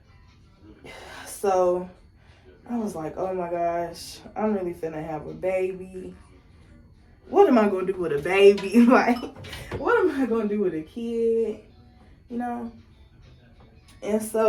So I was like, oh my gosh, I'm really finna have a baby. What am I gonna do with a baby? Like, what am I gonna do with a kid? You know? And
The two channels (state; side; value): identical; both; correlation 1.00